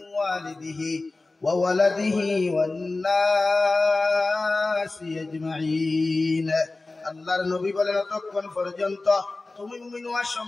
ওয়ালিদিহি ওয়া ওয়ালাদিহি ওয়ান নাসি আজমাইন। আল্লাহর নবী বলেন, ততক্ষণ পর্যন্ত তুমি মুমিন হওয়া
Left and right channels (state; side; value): quieter; right; 3.3 dB